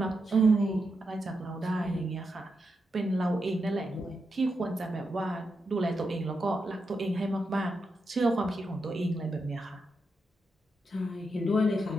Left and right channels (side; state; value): both; normal; correlation 0.85